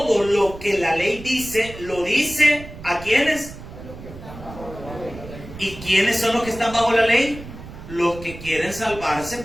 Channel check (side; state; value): right; noise; rumble, 14 dB below the sound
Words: lo que la ley dice, lo dice ¿a quiénes? ¿Y quiénes son los que están bajo la ley? Los que quieren salvarse